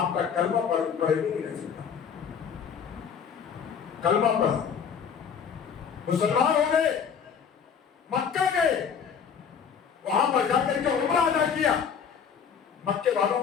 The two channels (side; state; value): right; quieter; 7.1 dB